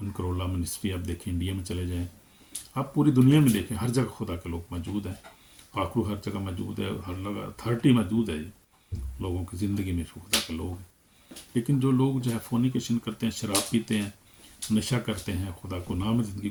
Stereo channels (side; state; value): both; identical; correlation 1.00